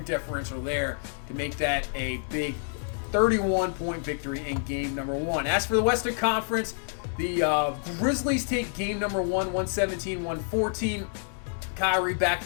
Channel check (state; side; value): silent; right; 59 dB below the other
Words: differential there to make that a big 31-point victory in game number 1. As for the Western Conference, the Grizzlies take game number 1, 117-114. Kyrie back